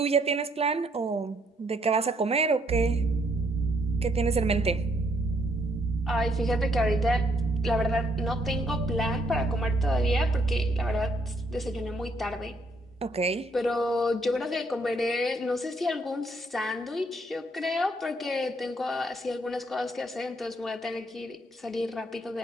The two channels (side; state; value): both; normal; correlation 0.70